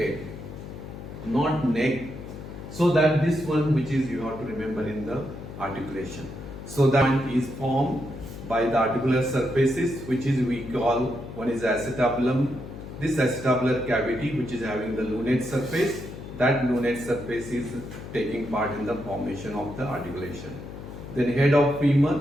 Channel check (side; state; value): left; noise; hum, 12 dB below the sound